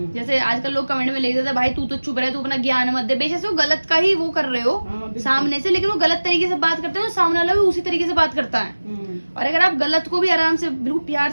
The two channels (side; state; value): both; inverted; correlation -1.00